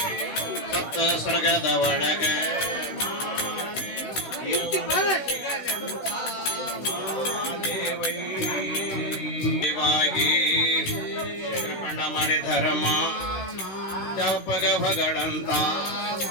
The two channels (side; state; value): right; late; 16 ms